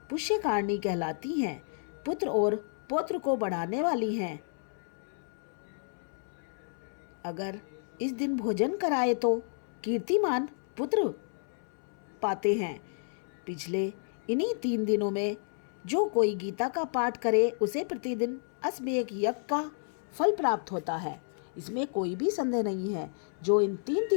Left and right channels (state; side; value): silent; right; 57 dB below the other